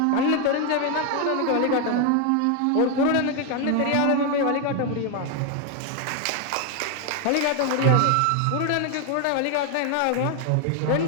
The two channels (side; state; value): both; different; correlation 0.01